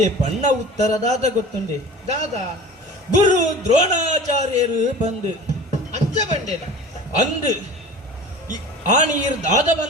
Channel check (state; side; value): normal; both; correlation 0.38